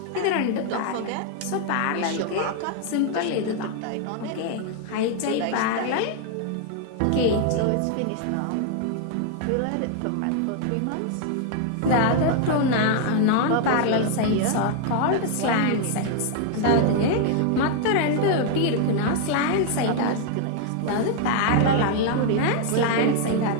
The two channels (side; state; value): both; different; correlation 0.00